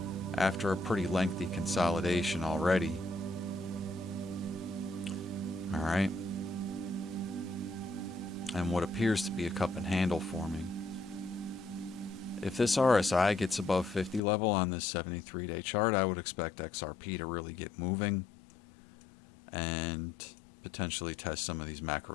after a pretty lengthy consolidation already. All right, and what appears to be a cup and handle forming. If this RSI gets above 50 level on this 73-day chart, I would expect XRP to really get moving and potentially test some of these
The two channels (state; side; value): drops out; right; at 14.2 s